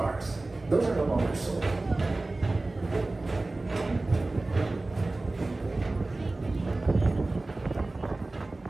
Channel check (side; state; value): left; quieter; 3.1 dB